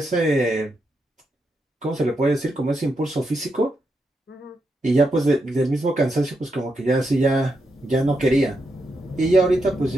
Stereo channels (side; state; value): both; normal; correlation 0.83